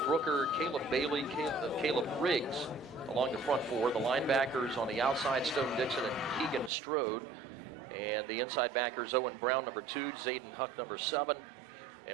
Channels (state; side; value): drops out; left; at 6.7 s